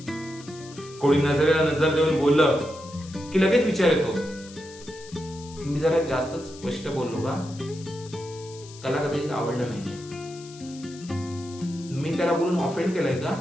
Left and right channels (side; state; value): left; noise; hiss, 19 dB below the sound